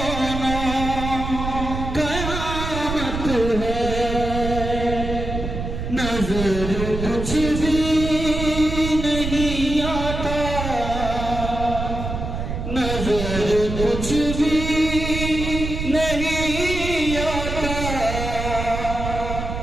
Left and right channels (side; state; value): right; noise; rumble, 5 dB below the sound